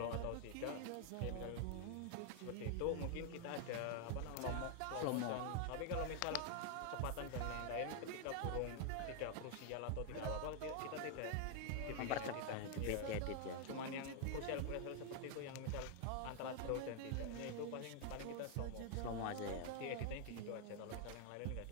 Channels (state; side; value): different; both; correlation 0.00